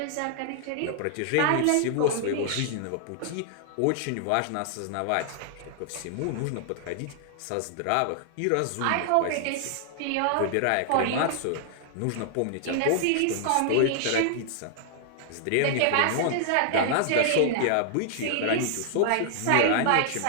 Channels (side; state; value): both; different; correlation -0.01